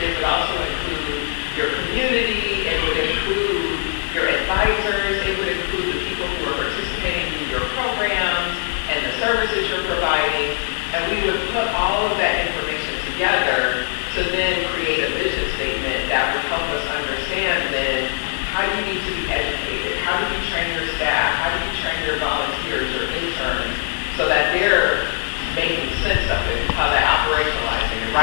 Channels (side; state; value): right; silent; 62 dB below the other